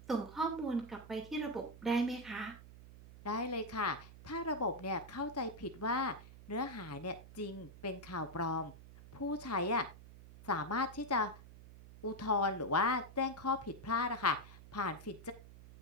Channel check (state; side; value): noise; right; hum, 17 dB below the sound